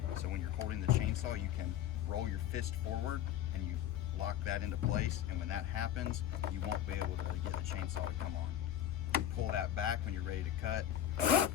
So when you're holding the chainsaw, you can roll your fist forward and you lock that into place. And when that happens, you won't be able to get the chainsaw to come on. You pull that back when you're ready to cut,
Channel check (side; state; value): right; quieter; 11.1 dB